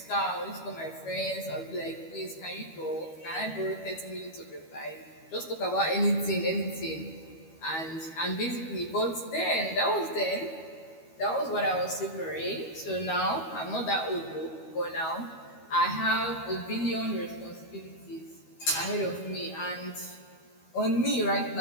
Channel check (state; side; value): late; right; 12 ms